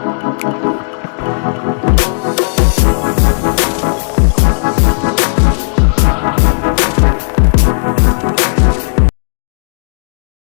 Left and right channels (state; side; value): silent; right; digital silence